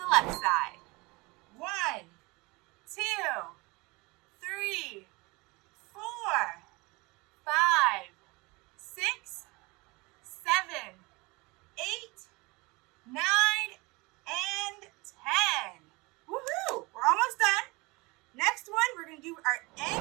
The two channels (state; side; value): quieter; left; 24.9 dB